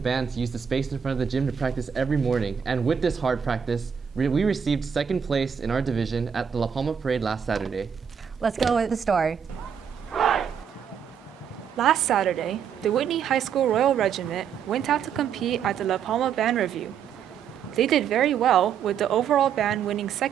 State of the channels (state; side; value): quieter; left; 7.5 dB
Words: to use the space in front of the gym to practice every morning. And with this hard practice, we received second place in our division at the La Palma Parade last Saturday. Let's go with the story. Last Saturday, the Whitney High School Royal Regiment went out to compete at the La Palma Band Review. They did very well, with the overall band winning